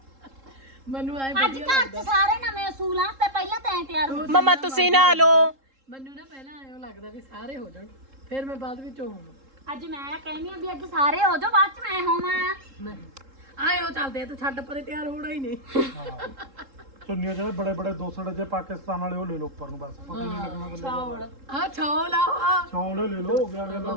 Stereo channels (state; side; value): late; left; 3.7 ms